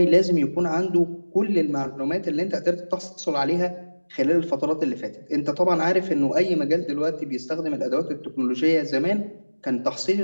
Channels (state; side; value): inverted; both; correlation -1.00